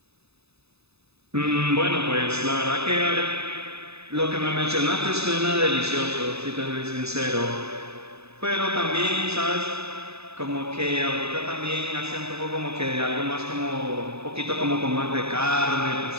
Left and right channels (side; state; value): left; late; 0.79 ms